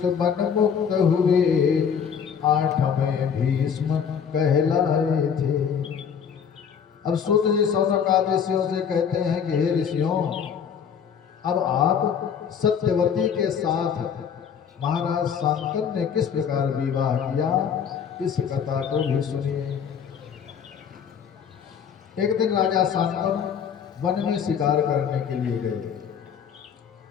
बन मुक्त हुए 8वें भीष्म कहलाए थे। अब सूत जी सौनकादि ऋषियों से कहते हैं कि हे ऋषियों, अब आप सत्यवती के साथ महाराज शांतनु ने किस प्रकार विवाह किया, इस कथा को भी सुनिए। एक दिन राजा शांतनु वन में शिकार करने के लिए गए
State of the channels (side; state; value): right; quieter; 7.4 dB